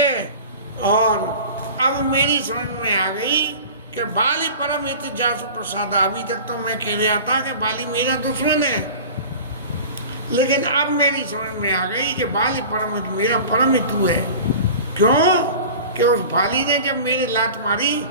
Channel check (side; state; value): both; inverted; correlation -0.38